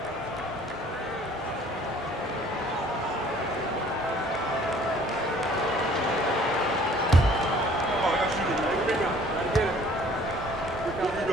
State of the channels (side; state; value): both; normal; correlation 0.55